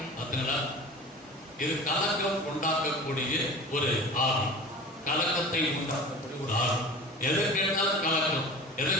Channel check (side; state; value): both; normal; correlation 0.37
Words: பார்த்தீங்களா? இது கலக்கம் உண்டாக்கக்கூடிய ஒரு ஆவி, கலக்கத்தை உண்டாக்கக்கூடிய ஒரு ஆவி. எதை கேட்டாலும் கலக்கம், எதை